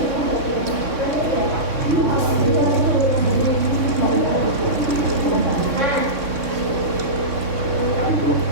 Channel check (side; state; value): left; late; 3.6 ms